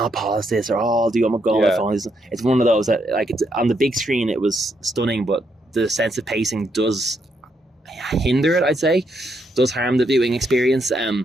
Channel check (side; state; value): both; normal; correlation 0.77